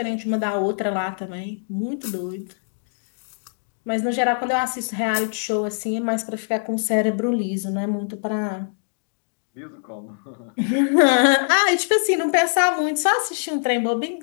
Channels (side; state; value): right; silent; digital silence